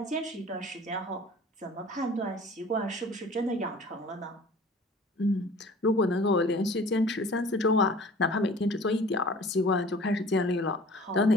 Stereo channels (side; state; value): both; normal; correlation 0.46